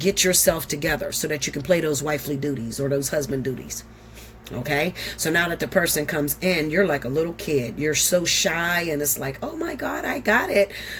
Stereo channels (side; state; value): both; identical; correlation 1.00